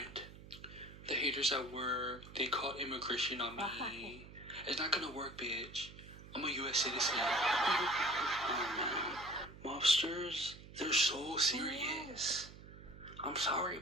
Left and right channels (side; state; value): right; noise; hum, 16 dB below the sound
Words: The haters at work, they called immigration on me. It's not gonna work, bitch. I'm a U.S. citizen. Oh man. Mobsters, they're so serious. I'm sorry,